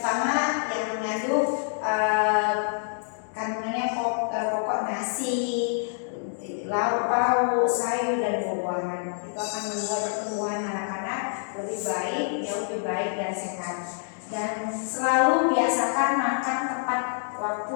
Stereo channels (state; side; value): silent; right; digital silence